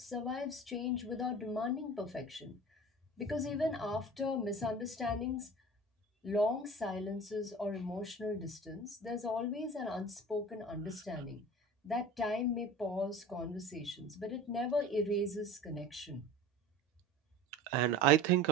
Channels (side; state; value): both; normal; correlation 0.38